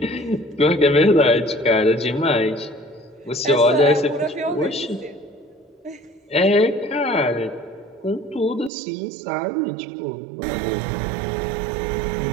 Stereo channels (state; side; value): drops out; left; at 8.7 s